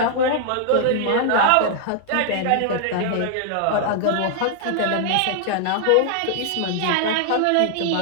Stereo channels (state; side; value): different; both; correlation -0.01